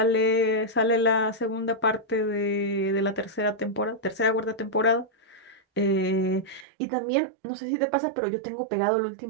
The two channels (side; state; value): left; drops out; at 6.7 s